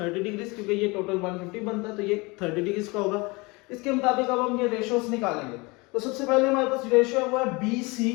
डिग्रीज, क्योंकि ये टोटल 150 बनता है, तो ये 30 डिग्रीज का होगा। इसके मुताबिक अब हम ये रेशियोस निकालेंगे। तो सबसे पहले हमारे पास रेशियो है वो है BC,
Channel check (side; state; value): right; quieter; 25.8 dB